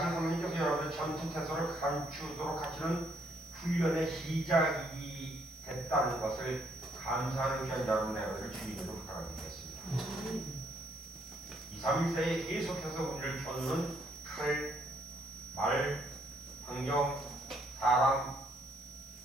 하나님께서 여러분의 전투 태세를 감추도록 하시는 훈련의 시작이 됐다는 것을 감사하는 귀한 여러분 여러분을 주님으로 부탁드리겠습니다. 2, 3일세에 계속해서 우리를 겨누는 칼, 말, 환경, 사람,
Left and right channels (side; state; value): left; noise; hiss, 23 dB below the sound